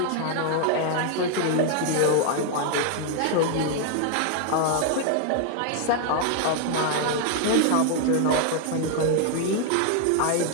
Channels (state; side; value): different; both; correlation 0.00